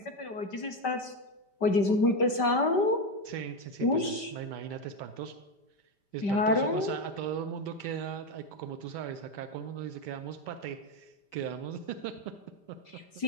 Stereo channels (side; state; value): right; late; 5.1 ms